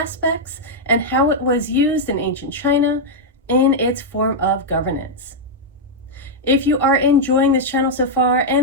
and how it was used in ancient China in its form of governance. If you are enjoying this channel so far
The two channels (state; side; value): normal; both; correlation -0.03